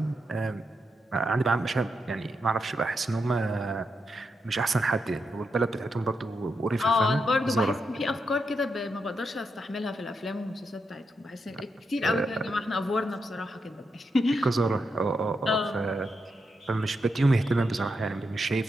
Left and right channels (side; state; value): both; normal; correlation 0.84